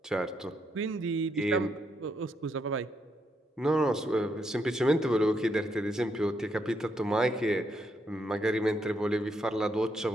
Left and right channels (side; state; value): both; normal; correlation 0.77